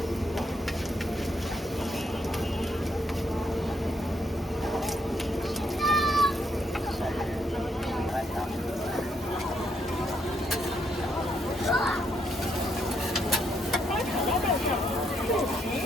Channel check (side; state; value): both; normal; correlation 0.75